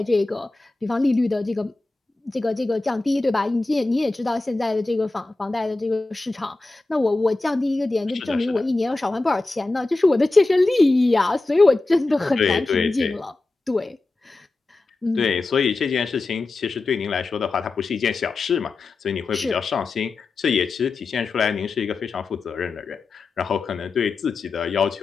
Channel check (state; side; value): quieter; right; 3.3 dB